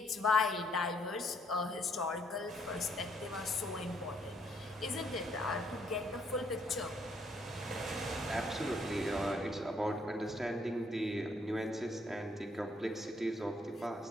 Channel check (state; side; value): normal; both; correlation 0.69